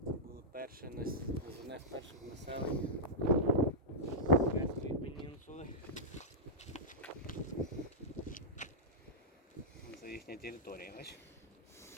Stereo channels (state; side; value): normal; both; correlation -0.10